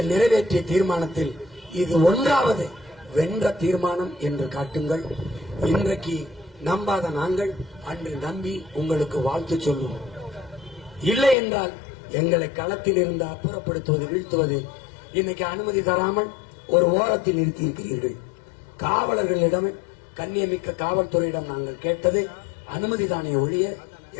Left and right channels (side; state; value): right; drops out; at 11.4 s